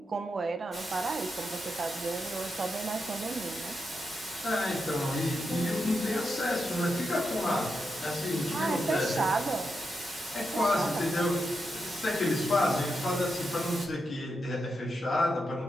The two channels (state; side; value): normal; both; correlation 0.86